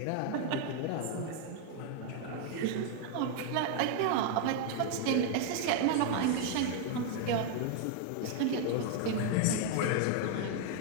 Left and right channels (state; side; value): different; both; correlation 0.00